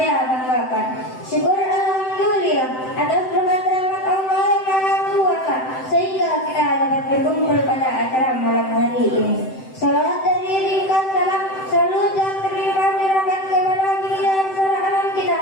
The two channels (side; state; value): right; late; 7.8 ms